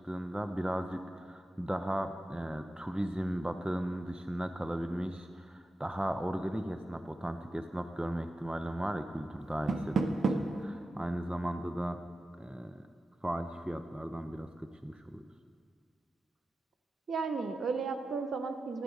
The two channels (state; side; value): normal; both; correlation 0.92